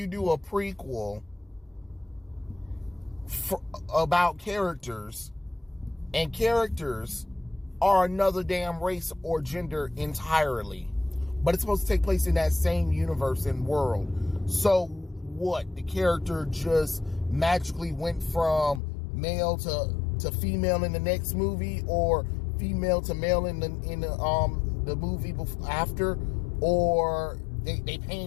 do a prequel about characters, and characters are another damn race or gender entirely, but it's supposed to take place in that same universe and world. So what? The character just magically went from male to female in the next movie, or female to male in the movie after, or they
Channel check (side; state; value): right; drops out; at 18.8 s